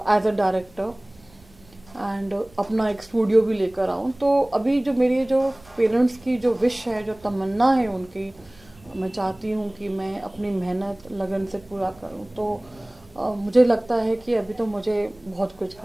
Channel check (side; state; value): right; noise; rumble, 26 dB below the sound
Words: एज अ डायरेक्टर, एंड अपना एक स्टूडियो भी लेकर आऊँ। तो अभी जो मेरी जो पेरेंट्स की जो विश है, जो तमन्ना है उनकी, मैं चाहती हूँ कि मैं अपनी मेहनत लगन से पूरा करूँ। तो मुझे लगता है कि अभी तो मुझे बहुत कुछ